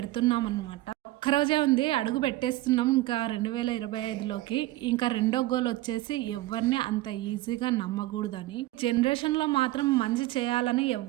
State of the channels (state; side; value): quieter; left; 17.2 dB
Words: అనమాట. ఒక్కరోజే ఉంది, అడుగు పెట్టేస్తున్నాం ఇంకా 2025లోకి. ఇంకా రెండో గోల్ వచ్చేసి ఎవరిని అంత ఈజీగా నమ్మకూడదని. జనరేషన్లో మాత్రం మంచి చేయాలని